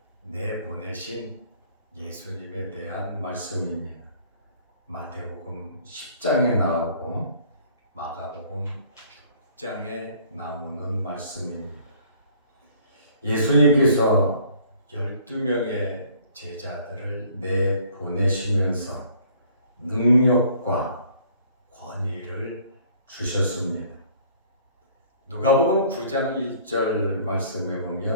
내보내신 예수님에 대한 말씀입니다. 마태복음 10장에 나오고 마가복음 6장에 나오는 말씀입니다. 예수님께서 12명의 제자들을 내보내시면서 능력과 권위를 주셨습니다. 누가복음 9장 1절 말씀에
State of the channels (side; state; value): both; inverted; correlation -0.56